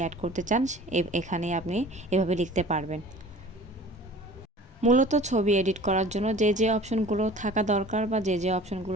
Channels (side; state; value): both; normal; correlation 0.45